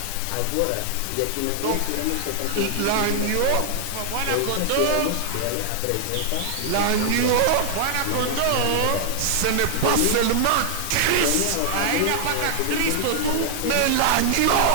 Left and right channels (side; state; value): both; different; correlation 0.00